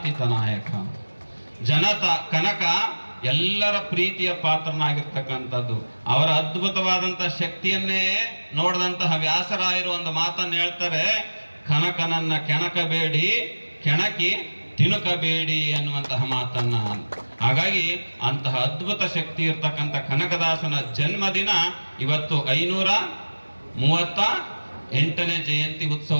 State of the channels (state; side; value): inverted; both; correlation -1.00